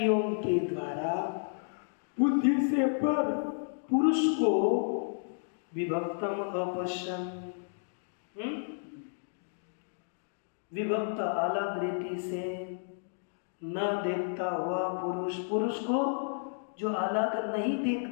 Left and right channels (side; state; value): right; silent; digital silence